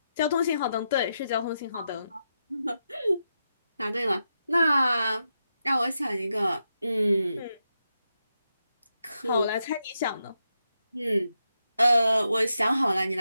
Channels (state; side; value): inverted; both; correlation -0.86